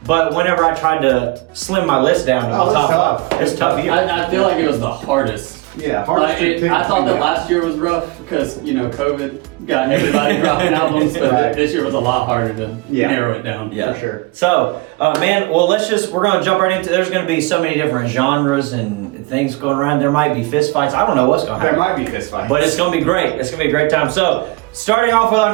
But whenever I tried to slim my list down to my it's top tough. 5, it's tough year. I feel like it was the hardest. Yeah, hard Like, to pick I thought that between last year was rough because, COVID got everybody dropping albums, but Right. this year was a lot harder to narrow it down. Yeah. for sure. So, man, well, we're gonna jump right into, there's gonna be so many different genres and things going around. There might be fist fights. I don't know what's gonna There happen. might be fist fights. But it's gonna be great. It's gonna be a great time. So, starting off with our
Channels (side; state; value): left; quieter; 23.8 dB